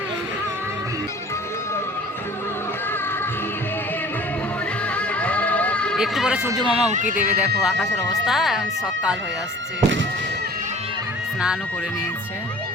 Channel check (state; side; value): normal; both; correlation 0.46